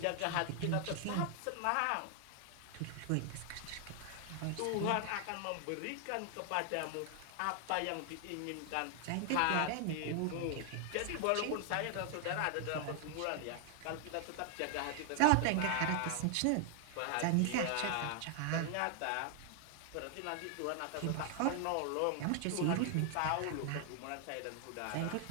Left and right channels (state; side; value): different; both; correlation 0.00